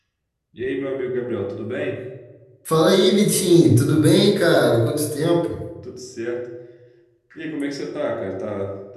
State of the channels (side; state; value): both; identical; correlation 1.00